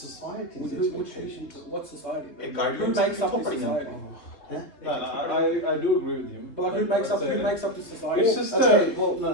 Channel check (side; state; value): right; late; 3.0 ms